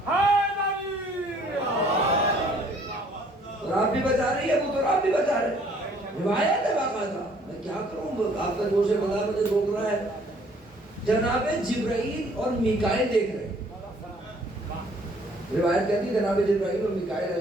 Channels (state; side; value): normal; both; correlation 0.60